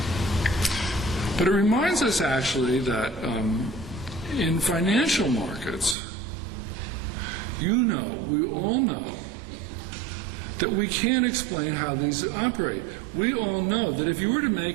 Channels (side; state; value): left; drops out; at 6.0 s